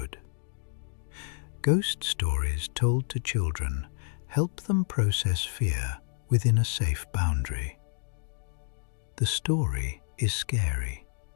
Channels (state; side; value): silent; right; digital silence